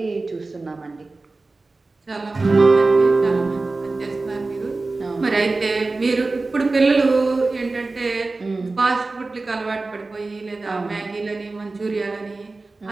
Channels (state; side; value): quieter; left; 3.5 dB